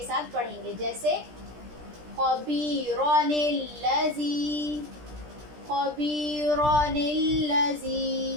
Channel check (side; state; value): left; late; 17 ms